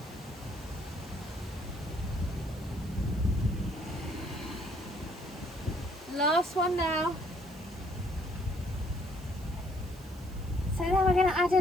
Last one now. So then we're going to add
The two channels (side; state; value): right; noise; hiss, 23 dB below the sound